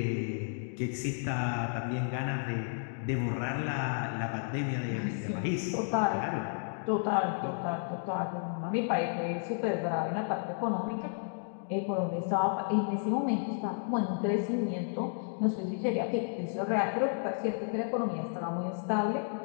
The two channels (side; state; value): right; silent; digital silence